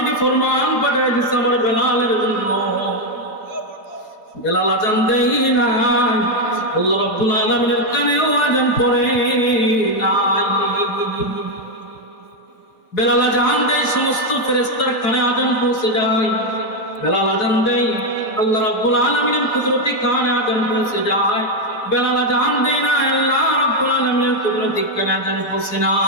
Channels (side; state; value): right; late; 4.8 ms